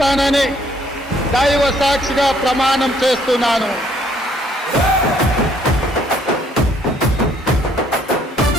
దైవ సాక్షిగా ప్రమాణం చేస్తున్నాను.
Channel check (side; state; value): both; normal; correlation 0.65